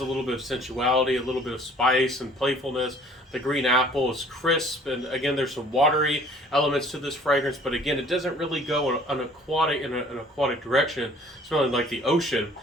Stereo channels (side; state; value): both; normal; correlation 0.54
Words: a little bit of sensuality, a little bit of spice and playfulness. The green apple is crisp, and again, there's some watery elements to this fragrance, but again, it doesn't really go in an aquatic direction, smelling like the ocean.